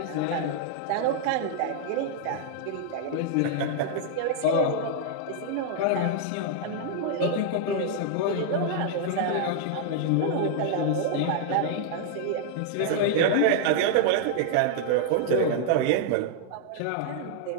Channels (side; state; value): both; different; correlation -0.01